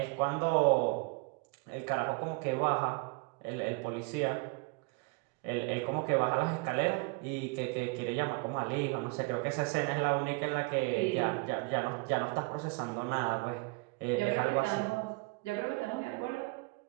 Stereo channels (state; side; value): quieter; left; 28.6 dB